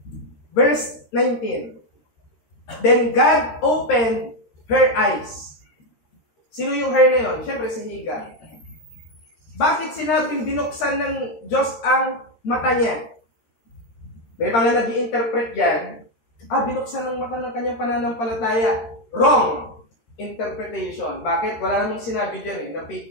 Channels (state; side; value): late; right; 13 ms